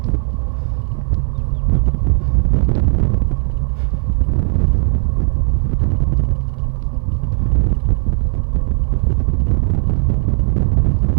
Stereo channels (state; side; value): silent; left; 59 dB below the other